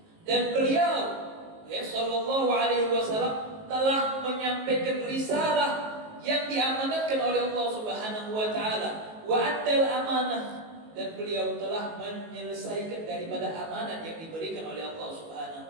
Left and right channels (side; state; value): left; late; 19 ms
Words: Dan beliau sallallahu alaihi wasallam telah menyampaikan risalah yang diamanatkan oleh Allah Subhanahu wa taala. Wa addal amanah, dan beliau telah menyelesaikan daripada amanat yang diberikan oleh Allah